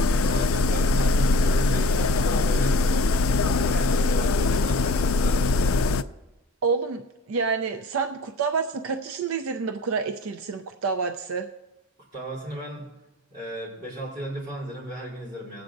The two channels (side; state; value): both; normal; correlation 0.45